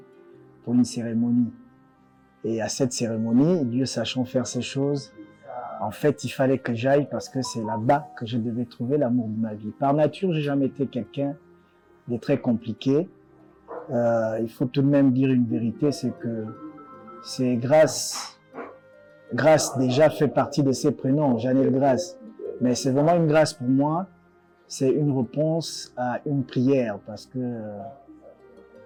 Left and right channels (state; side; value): identical; both; correlation 1.00